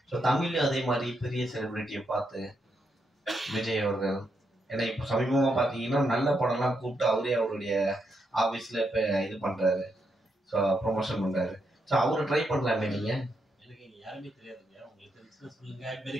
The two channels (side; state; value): both; normal; correlation 0.81